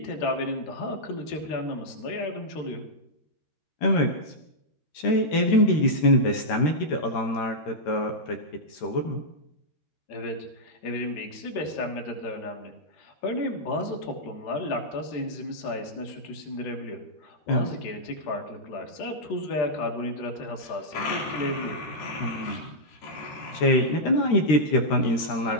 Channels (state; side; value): late; right; 13 ms